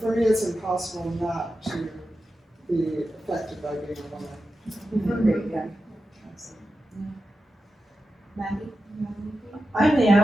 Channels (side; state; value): both; normal; correlation 0.91